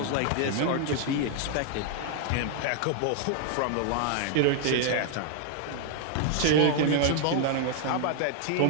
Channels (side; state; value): both; different; correlation 0.00